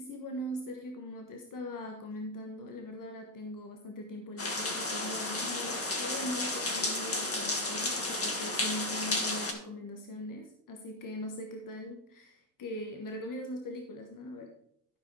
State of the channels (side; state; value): both; normal; correlation 0.05